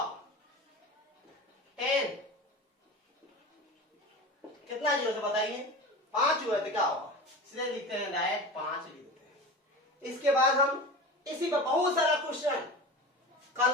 10 कितना जीरो से बताइए? 5 हुआ तो क्या होगा? इसलिए लिखते हैं डायरेक्ट 5 लिख देते हैं। इसके बाद हम इसी पर बहुत सारा क्वेश्चन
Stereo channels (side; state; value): both; normal; correlation 0.31